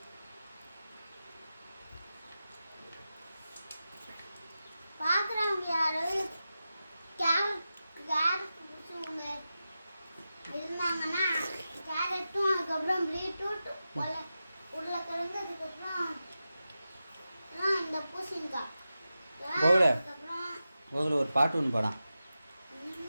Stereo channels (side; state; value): both; inverted; correlation -0.92